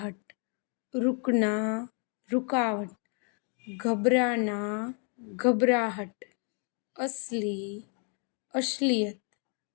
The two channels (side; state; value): right; quieter; 39.9 dB